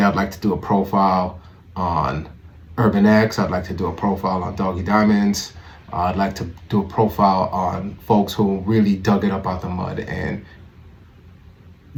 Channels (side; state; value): both; identical; correlation 1.00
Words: I'd like to do a profile on Urban X. I'd like to do a profile on Doggy Diamonds. I'd like to do a profile on folks who really dug it up out the mud and